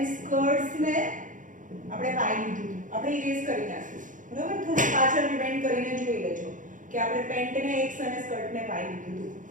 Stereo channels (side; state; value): left; late; 0.38 ms